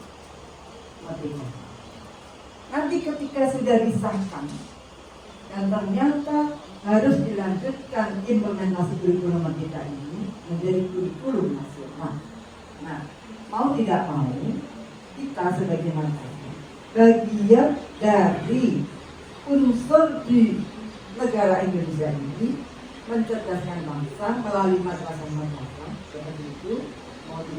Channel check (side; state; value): both; identical; correlation 1.00